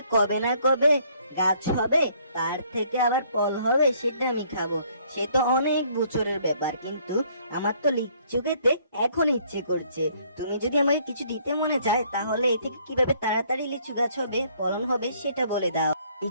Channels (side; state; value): both; inverted; correlation -0.63